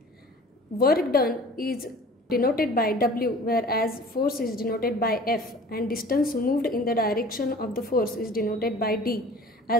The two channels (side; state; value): both; normal; correlation 0.45